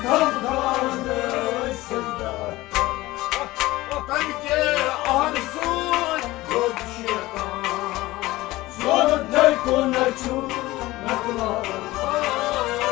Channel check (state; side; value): quieter; right; 18.5 dB